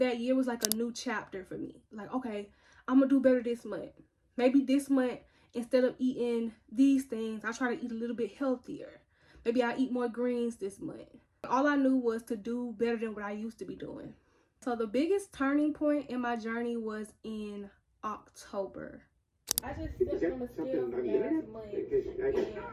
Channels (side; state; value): both; identical; correlation 1.00